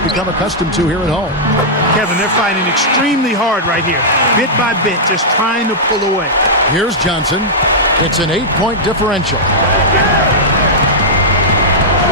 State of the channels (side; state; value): both; normal; correlation -0.10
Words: become accustomed to here at home. Kevin, they're fighting extremely hard right here. Bit by bit, just trying to pull away. Here's Johnson. It's an 8-point differential.